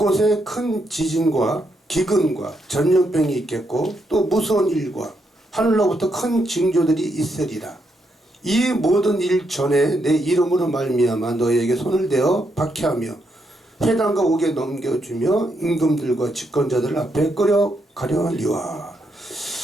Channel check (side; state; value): both; normal; correlation 0.79